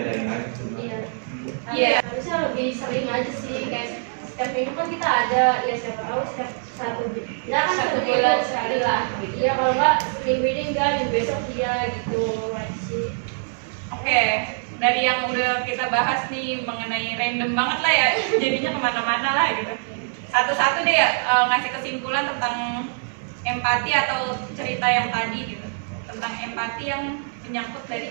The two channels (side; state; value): left; silent; digital silence